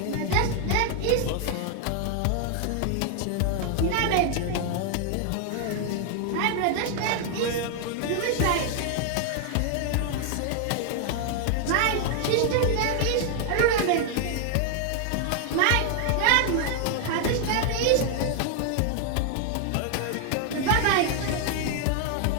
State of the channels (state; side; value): different; both; correlation 0.00